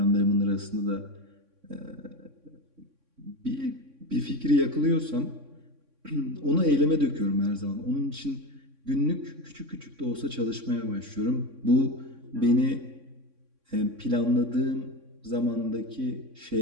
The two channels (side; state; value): left; late; 3.6 ms